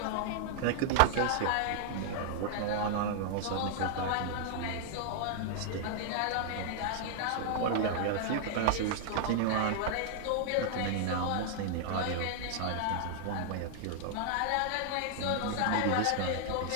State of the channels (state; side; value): different; both; correlation 0.00